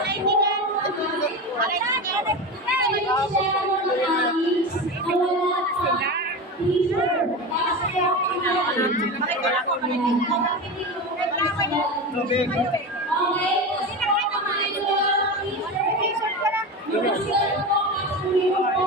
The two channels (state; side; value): normal; both; correlation 0.23